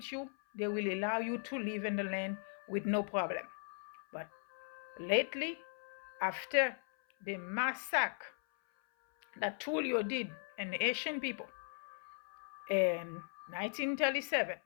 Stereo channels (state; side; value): silent; right; 52 dB below the other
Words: you, they will allow you to live in the land with no problem. But lately, after the massacre that Tullio did and the Asian people in 1937,